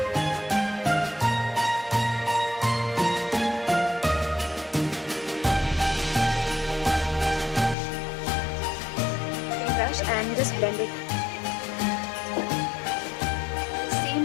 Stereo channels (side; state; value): right; drops out; at 7.8 s